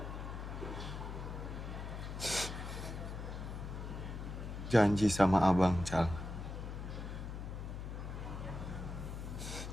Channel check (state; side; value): noise; left; hum, 6 dB below the sound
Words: Janji sama abang, Cal.